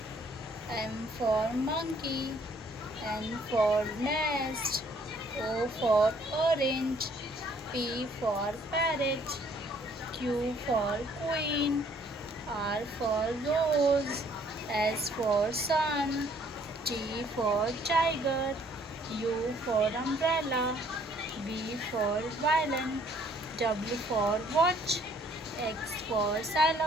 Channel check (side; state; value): both; normal; correlation 0.62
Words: M for monkey, N for nest, O for orange, P for parrot, Q for queen, R for rose, S for sun, T for tiger, U for umbrella, V for violin, W for watch, X for